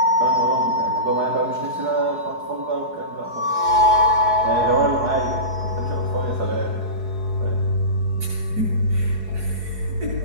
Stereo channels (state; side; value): late; left; 4.7 ms